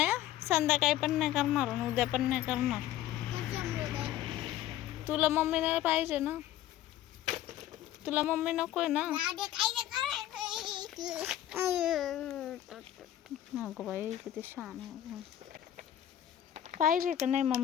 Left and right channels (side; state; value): right; quieter; 12.4 dB